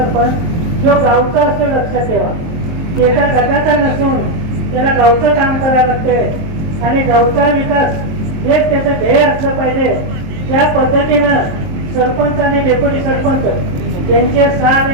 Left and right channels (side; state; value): left; late; 23 ms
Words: जो गावचा असतो, लक्षात ठेवा, एका गटाचा नसून त्याला गावचं काम करावं लागते आणि गावचा विकास हेच त्याचं ध्येय असलं पाहिजे. त्या पद्धतीनं सरपंच आणि डेप्युटी सरपंच त्यांचे 6